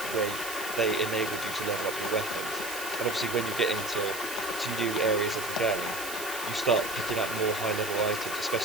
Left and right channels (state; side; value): noise; right; hiss, 9 dB below the sound